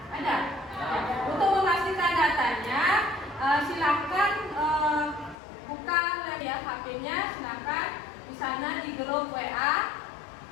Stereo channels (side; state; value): right; drops out; at 5.4 s